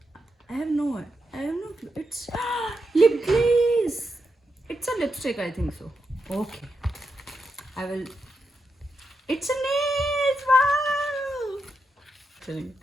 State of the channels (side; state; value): both; normal; correlation 0.85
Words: I have no clue. It's lip glaze. It's a lipstick, I think so. Okay. I will. It's a nails. Wow. Kidding.